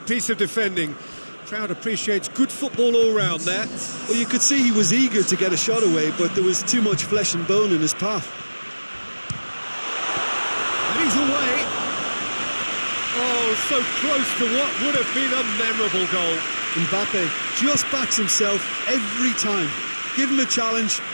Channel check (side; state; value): both; inverted; correlation -1.00